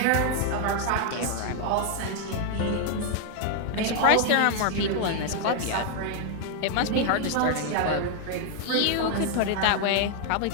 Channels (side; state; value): both; different; correlation 0.00